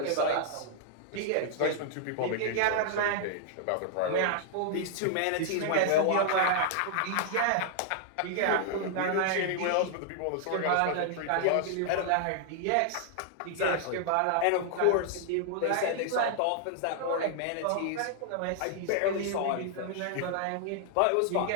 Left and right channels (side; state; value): both; different; correlation -0.01